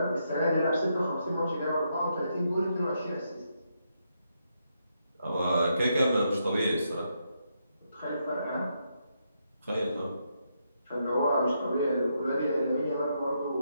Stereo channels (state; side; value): inverted; both; correlation -0.80